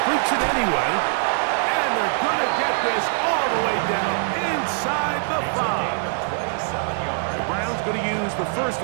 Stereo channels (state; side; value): silent; left; 64 dB below the other